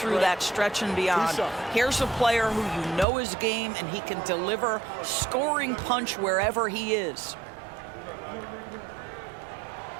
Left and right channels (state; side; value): drops out; left; at 3.1 s